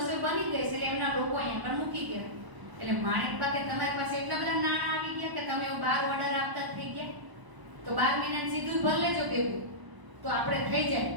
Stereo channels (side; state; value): left; late; 1.0 ms